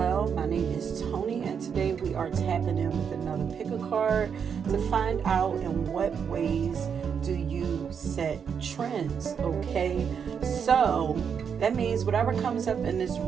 My name is Tony, and today we are tapping in with another pick a card to find out in what ways do you set trends. Okay, so that means whatever comes up in this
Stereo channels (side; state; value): left; quieter; 7.1 dB